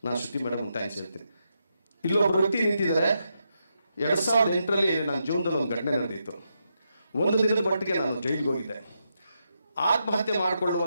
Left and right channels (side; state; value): both; inverted; correlation -0.83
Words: ನಾನು ಶ್ರುತಿ ಮೇಡಮ್ ಥ್ಯಾಂಕ್ಸ್ ಹೇಳ್ತೀನಿ. ಇಲ್ಲೊಬ್ಬರು ವ್ಯಕ್ತಿ ನಿಂತಿದ್ದಾರೆ. 2008ರಲ್ಲಿ ನನ್ನ ಜೀವನದಲ್ಲಿ ಒಂದು ಘಟನೆ ನಡೆದಿತ್ತು. 1 ದಿನದ ಮಟ್ಟಿಗೆ ನಾನು ಜೈಲಿಗೆ ಹೋಗಿದ್ದೆ. ಆತ್ಮಹತ್ಯೆ